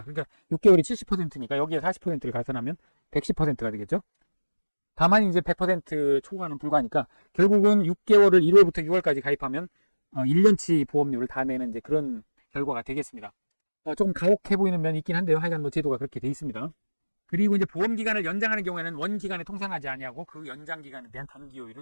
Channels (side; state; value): both; inverted; correlation -1.00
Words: 그러니까 6개월이 70%니까 여기에 40%를 가산하면 110%가 되겠죠. 다만 이제 100% 초과는 불가하니까 결국은 6개월을 1월부터 6월까지 가입하면 1년치 보험료를 다 내는 이제 그런 결과가 되겠습니다. 조금 가혹해 보이는 면이 있긴 한데요. 하여간 뭐 제도가 그렇게 돼 있습니다. 그리고 이제 보험 기간을 연장하는 경우에는 원 기간에 통상하지 아니하고 그 연장 기간에 대한 단기